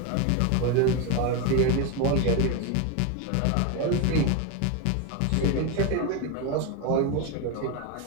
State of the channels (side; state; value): both; different; correlation 0.02